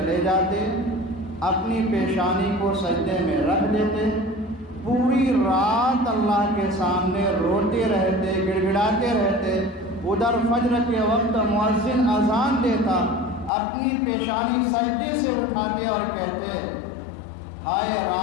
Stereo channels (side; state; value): right; drops out; at 13.5 s